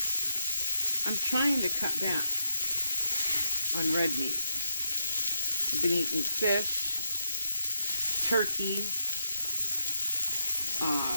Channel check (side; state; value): both; inverted; correlation -0.82